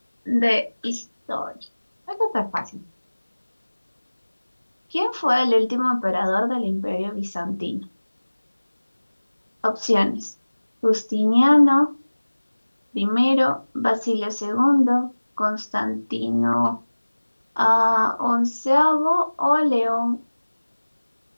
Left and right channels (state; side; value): inverted; both; correlation -1.00